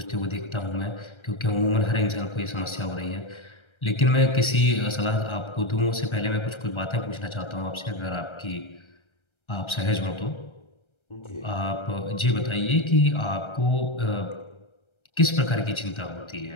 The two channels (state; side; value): late; right; 1.3 ms